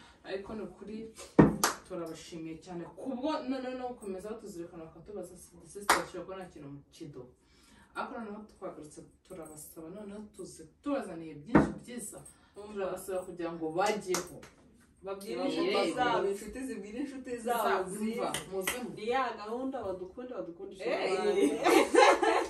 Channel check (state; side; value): identical; both; correlation 1.00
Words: ariko no kuri turabashimiye cyane kubwo none no gukomeza tuzirikana bakatubaza The Sisters Show ko nta kintu mu kido ariko noneho twagarutse turabasaba noneho tubazaniye byinshi byiza turabasaba kugira ngo bajyeho babwire inshuti zabo inshuti zibwire inshuti zabo ziva ni ya gahunda badukundisha